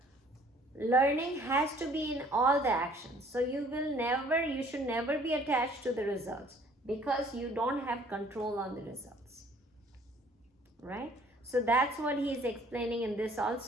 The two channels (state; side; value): normal; both; correlation 0.57